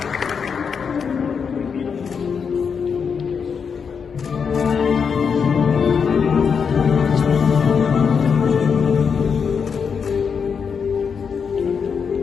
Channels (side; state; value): right; quieter; 6.3 dB